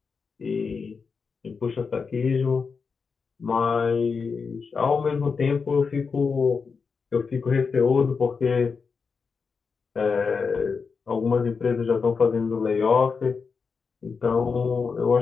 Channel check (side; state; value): right; quieter; 5.3 dB